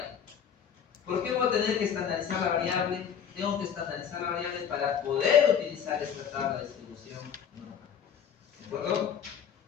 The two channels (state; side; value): quieter; right; 8.1 dB